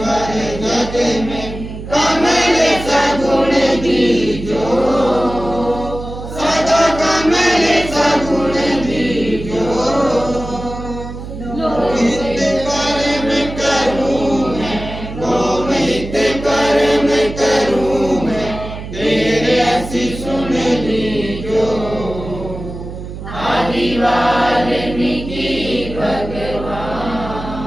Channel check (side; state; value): right; noise; hum, 10 dB below the sound